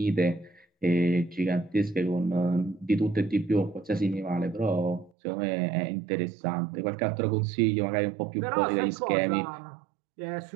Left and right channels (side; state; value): left; drops out; at 5.1 s